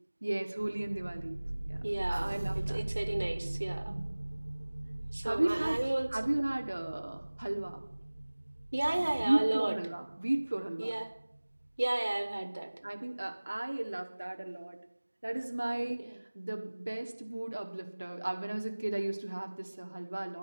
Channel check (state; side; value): inverted; both; correlation -1.00